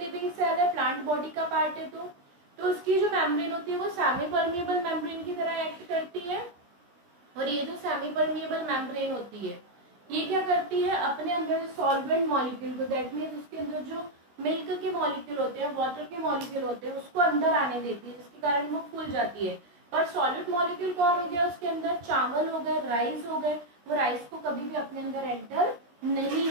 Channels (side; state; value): left; late; 17 ms